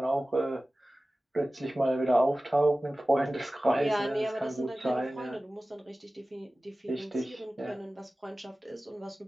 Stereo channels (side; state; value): both; normal; correlation 0.96